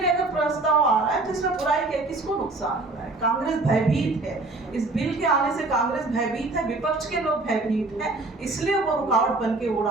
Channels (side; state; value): left; quieter; 3.2 dB